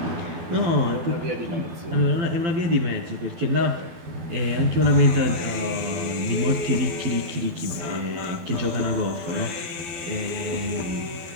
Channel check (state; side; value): late; left; 12 ms